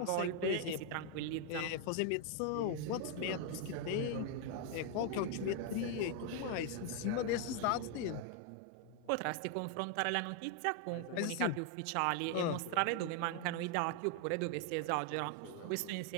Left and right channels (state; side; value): different; both; correlation 0.01